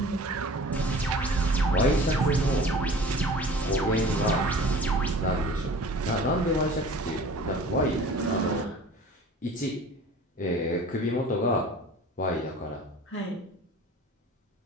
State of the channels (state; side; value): normal; both; correlation 0.43